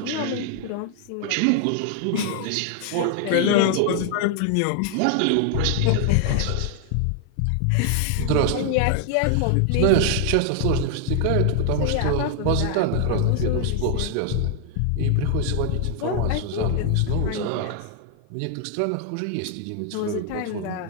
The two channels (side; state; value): both; different; correlation 0.00